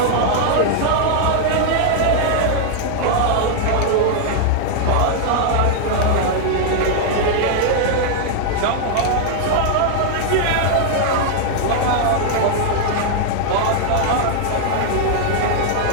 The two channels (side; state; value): both; different; correlation -0.01